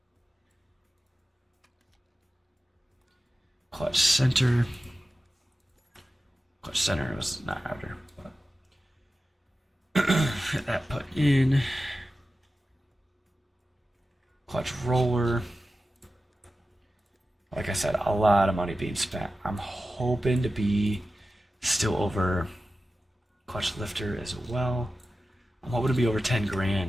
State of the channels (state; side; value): normal; both; correlation 0.93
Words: Clutch center. Clutch center was not outer, but get that put in. Clutch roller. Like I said, a lot of money being spent. I'm hoping to be still over clutch lifter as well. I'm hoping to be over